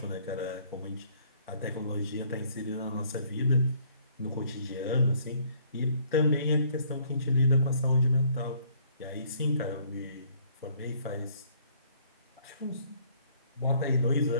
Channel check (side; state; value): both; inverted; correlation -0.62